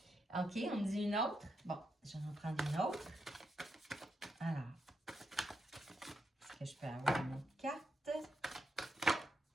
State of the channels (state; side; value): normal; both; correlation 0.83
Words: OK, on me dit une autre. Bon, je vais en prendre une autre. Alors, est-ce que je peux avoir une autre carte?